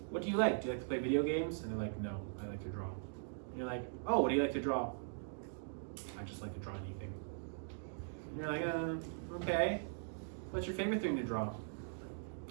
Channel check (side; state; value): left; silent; digital silence